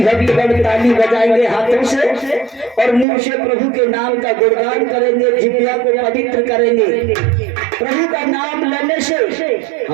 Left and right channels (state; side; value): drops out; left; at 3.1 s